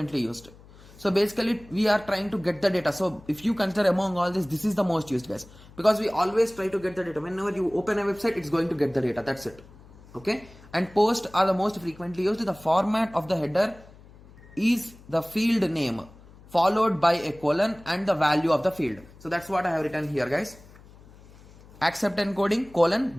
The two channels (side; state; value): left; noise; hum, 23 dB below the sound